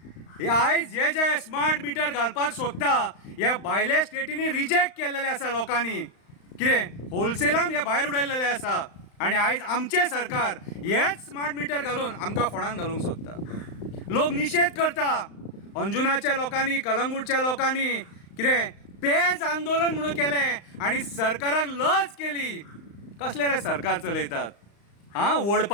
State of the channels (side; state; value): right; late; 35 ms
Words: आयज जे स्मार्ट मिटर घालपाक सोदता ह्या भायल्या स्टेटींनी रिजेक्ट केल्लेले आसा लोकांनी। कितें होलसेलान हे भायर उडयल्लेले आसा आनी आयज आमचे सरकार हेच स्मार्ट मिटर घालून आमकां फोंडान घालूंक सोदता। लोक निशेध करता, अंजुनाच्या लोकांनी, कलंगूटच्या लोकांनी कितें पेज आंदोलन म्हणून केलें आनी सरकाराक लज केली। कसले रे सरकार चलयतात?